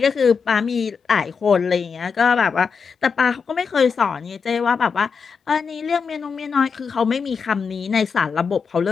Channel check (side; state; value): right; quieter; 5.7 dB